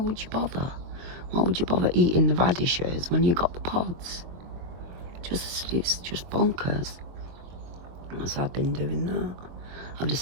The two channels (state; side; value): late; left; 22 ms